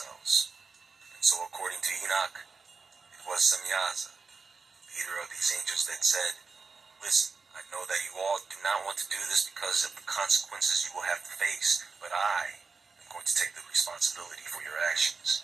And so according to Enoch, it was Semyaza, leader of these angels, that said, "Listen, I know that you all do not want to do this because of the consequences you will have to face, but I am going to take the responsibility for your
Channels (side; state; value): left; quieter; 4.7 dB